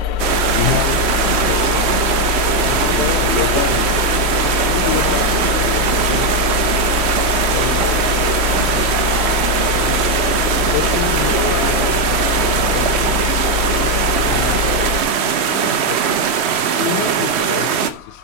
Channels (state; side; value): late; left; 3.1 ms